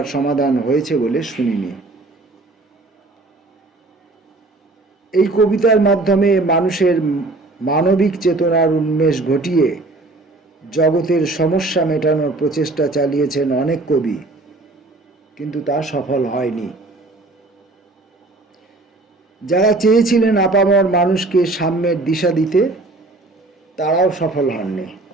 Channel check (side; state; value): left; quieter; 3.1 dB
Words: সমাধান হয়েছে বলে শুনিনি। এই কবিতার মাধ্যমে মানুষের মানবিক চেতনার উন্মেষ ঘটিয়ে জগতের সমস্যা মেটানোর প্রচেষ্টা চালিয়েছেন অনেক কবি, কিন্তু তা সফল হয়নি। যারা চেয়েছিলেন আপামর মানুষকে সাম্যের দিশা দিতে, তারাও সফল হননি।